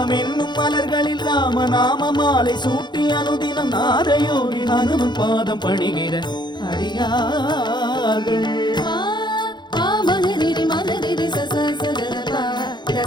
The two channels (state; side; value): late; right; 0.21 ms